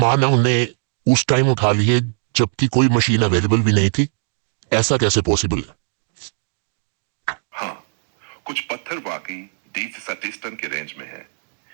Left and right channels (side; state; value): left; silent; digital silence